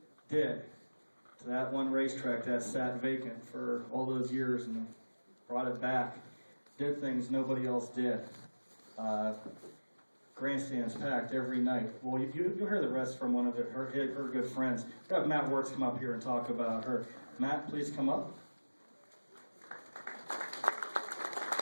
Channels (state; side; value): inverted; both; correlation -1.00